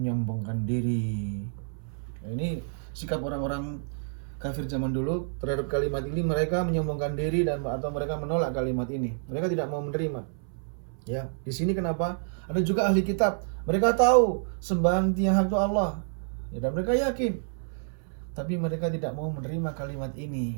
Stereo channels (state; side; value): silent; left; 59 dB below the other